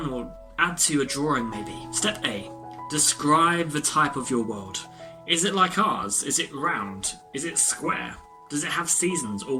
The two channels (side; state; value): both; identical; correlation 1.00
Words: or add to a drawing maybe. Step A. Describe the type of your world. Is it like ours? Is it round? Is it square? Does it have seasons or